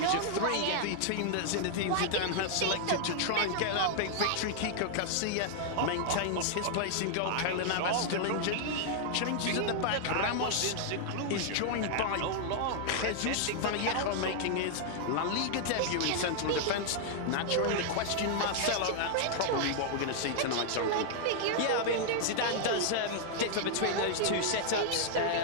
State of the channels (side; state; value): both; different; correlation -0.01